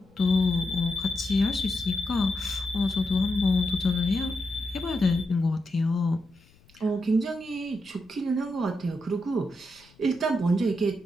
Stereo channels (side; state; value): left; noise; rumble, 29 dB below the sound